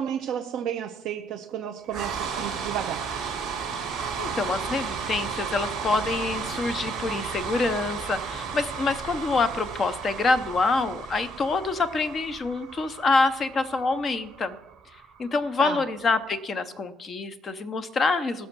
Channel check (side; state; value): both; normal; correlation 0.72